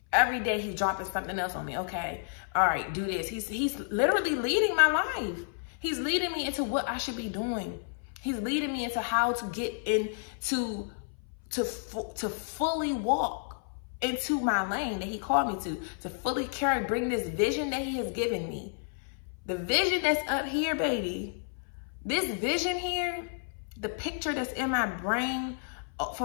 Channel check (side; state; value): right; silent; 57 dB below the other